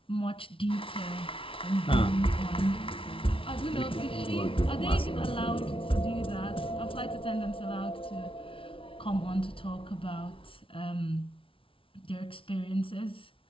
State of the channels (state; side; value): late; right; 0.25 ms